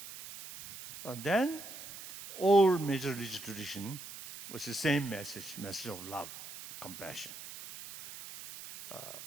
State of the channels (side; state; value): right; noise; hiss, 12 dB below the sound